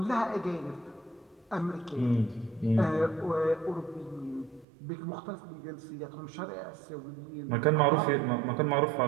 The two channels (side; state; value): left; drops out; at 4.7 s